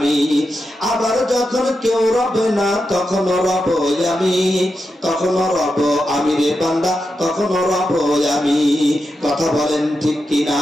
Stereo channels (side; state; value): both; normal; correlation 0.88